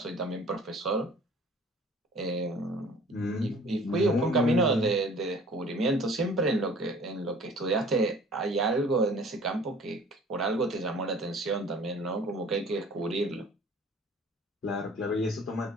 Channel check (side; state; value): both; normal; correlation 0.49